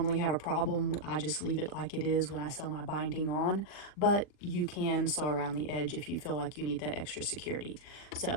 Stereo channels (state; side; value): late; right; 40 ms